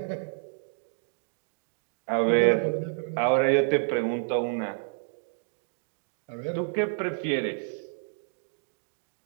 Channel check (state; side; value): silent; left; digital silence